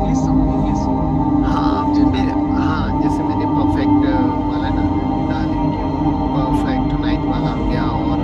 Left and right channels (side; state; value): both; identical; correlation 1.00